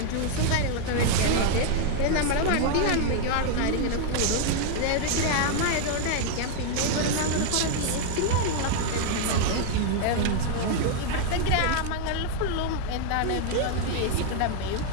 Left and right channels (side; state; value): both; different; correlation 0.00